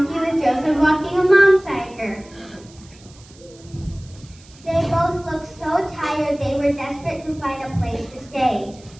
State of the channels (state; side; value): noise; right; hiss, 25 dB below the sound